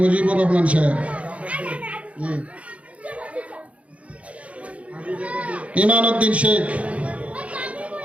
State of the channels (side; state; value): left; late; 0.064 ms